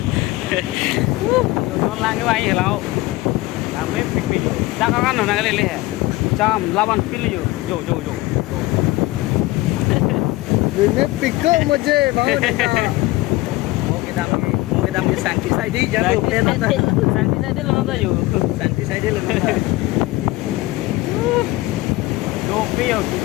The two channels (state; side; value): quieter; right; 19.5 dB